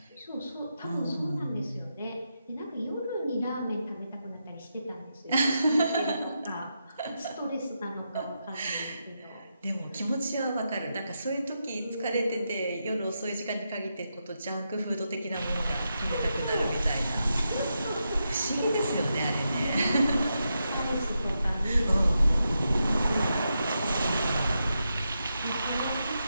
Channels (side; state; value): both; inverted; correlation -0.85